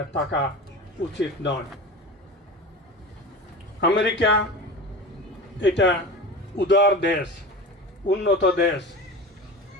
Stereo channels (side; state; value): both; normal; correlation 0.31